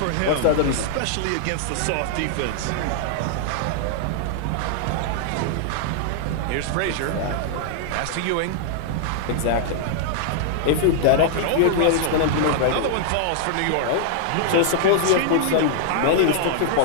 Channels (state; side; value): different; both; correlation -0.01